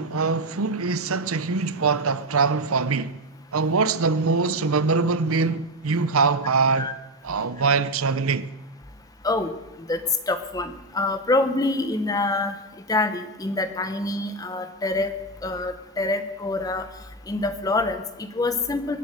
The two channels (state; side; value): normal; both; correlation 0.10